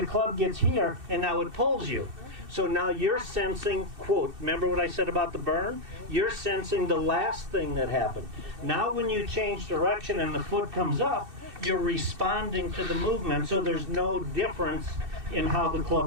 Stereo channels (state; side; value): late; left; 2.6 ms